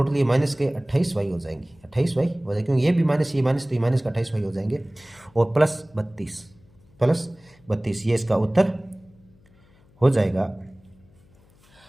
ये माइनस के 28y हो जाएंगे, 28y हो जाएगी, क्योंकि ये भी माइनस ये माइनस, तो ये माइनस का 28y हो जाएंगे, और प्लस 32 ये इसका उत्तर हो जाएगा।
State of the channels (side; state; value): left; noise; hum, 30 dB below the sound